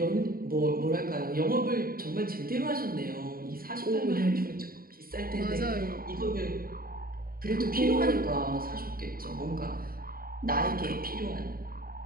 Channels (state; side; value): late; left; 0.43 ms